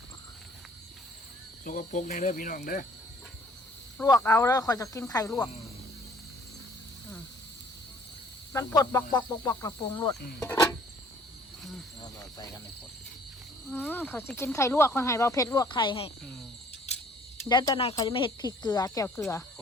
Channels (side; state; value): both; normal; correlation 0.57